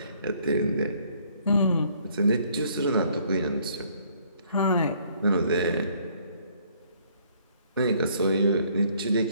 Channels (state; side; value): inverted; both; correlation -0.63